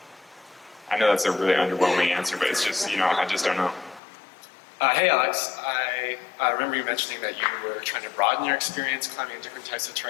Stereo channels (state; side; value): drops out; right; at 4.0 s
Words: I know that's a really underwhelming answer, but it's just, I just don't know. Hey, Alex. I remember you mentioning that you were trying to broaden your experience climbing in different types of